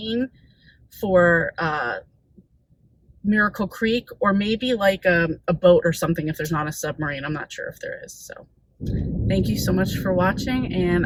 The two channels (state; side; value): identical; both; correlation 1.00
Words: for Miracle Creek, or maybe like a boat or something if there's not a submarine. I'm not sure if there is. So thank you so much for watching, and